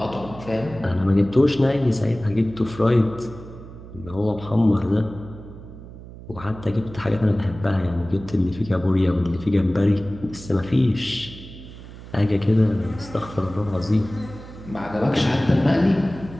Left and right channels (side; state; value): right; noise; hum, 15 dB below the sound